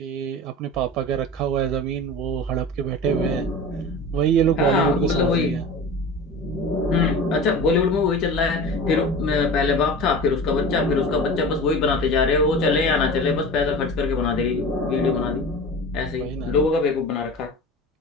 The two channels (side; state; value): both; normal; correlation 0.34